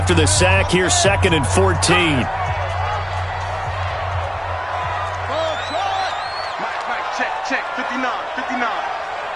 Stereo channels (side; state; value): both; identical; correlation 1.00